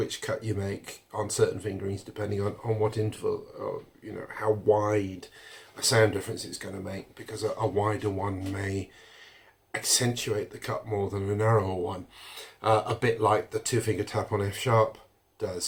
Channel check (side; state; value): both; identical; correlation 1.00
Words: cut you make on certain fingerings depending on what interval, or you know, how wide a sound difference it's going to make, because a wider one may accentuate the cut more than a narrower one, a bit like the 2-finger tap on F sharp